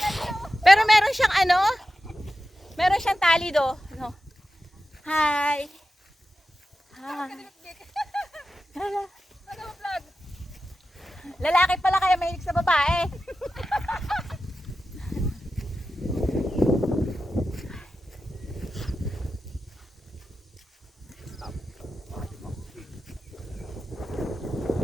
Pero meron siyang ano? Meron siyang tali do. No. Hi. Hi. Lalaki pala kaya mahilig sa babae.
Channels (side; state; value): both; normal; correlation 0.92